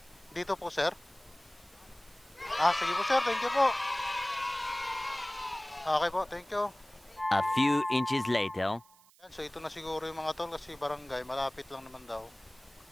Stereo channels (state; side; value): noise; right; hiss, 27 dB below the sound